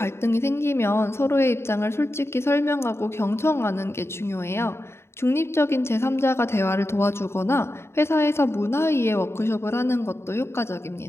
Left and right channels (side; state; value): right; late; 0.12 ms